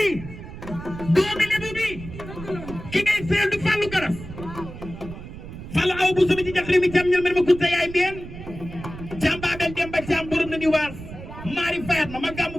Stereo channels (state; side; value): noise; right; rumble, 12 dB below the sound